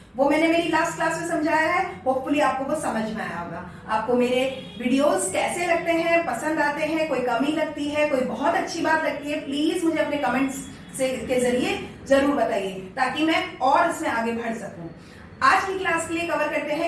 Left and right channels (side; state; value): both; identical; correlation 1.00